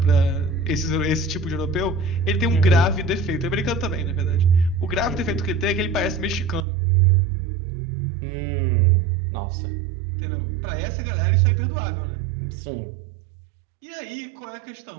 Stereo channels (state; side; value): drops out; left; at 6.6 s